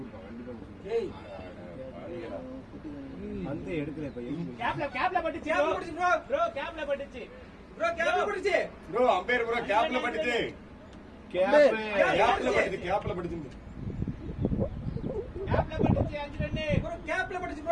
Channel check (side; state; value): both; identical; correlation 1.00